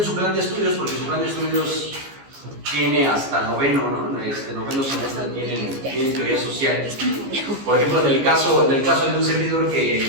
su plan de estudios, porque su plan de estudios tiene hasta noveno, ¿no? Noveno semestre tienen teoría social. Por ejemplo, en el caso de un servidor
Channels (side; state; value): left; late; 15 ms